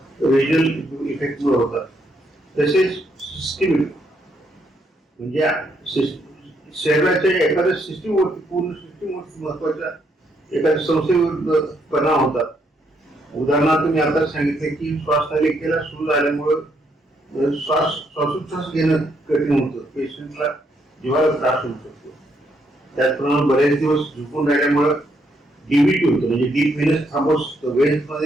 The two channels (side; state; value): both; normal; correlation 0.74